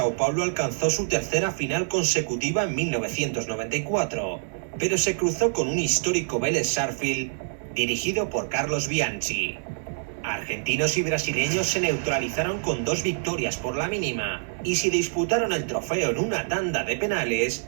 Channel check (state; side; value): silent; left; digital silence